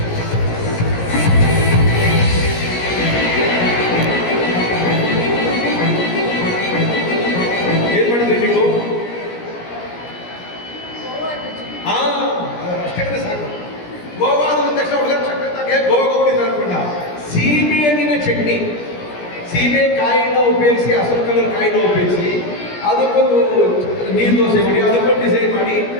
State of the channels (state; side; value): late; right; 17 ms